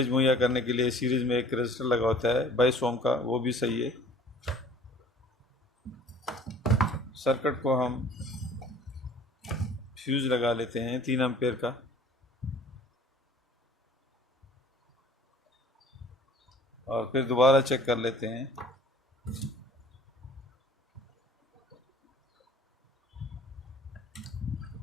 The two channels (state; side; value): normal; both; correlation 0.50